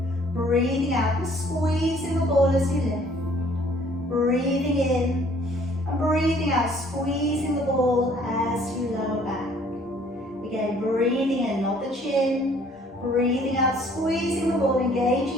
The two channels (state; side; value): normal; both; correlation 0.59